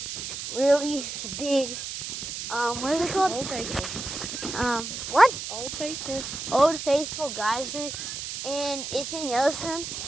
big, what is it called? Old Faithful. What? Old Faithful. Old Faithful geyser, and it's in Yellowstone.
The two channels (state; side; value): noise; right; hiss, 6 dB below the sound